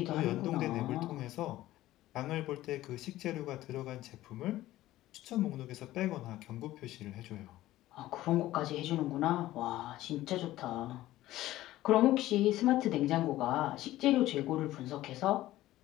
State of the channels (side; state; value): right; quieter; 15.5 dB